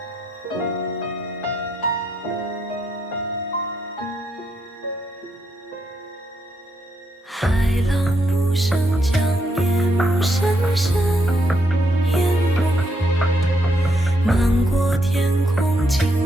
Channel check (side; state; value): both; normal; correlation 0.77